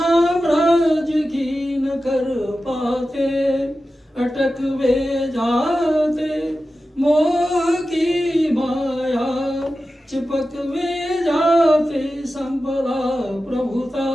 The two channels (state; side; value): normal; both; correlation 0.93